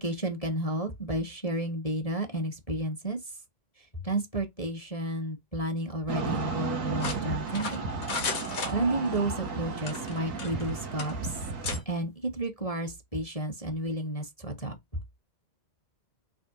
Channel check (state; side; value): late; right; 1.7 ms